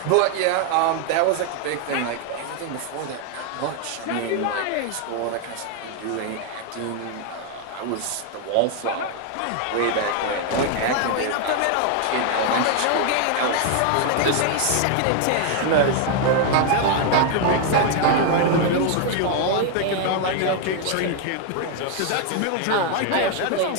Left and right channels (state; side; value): different; both; correlation 0.00